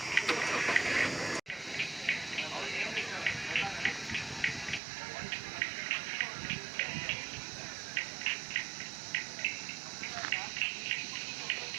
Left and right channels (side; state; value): left; drops out; at 4.8 s